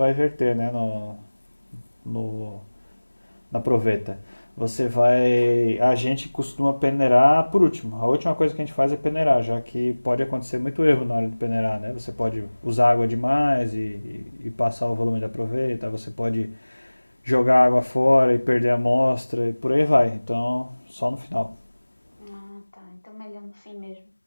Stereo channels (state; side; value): inverted; both; correlation -1.00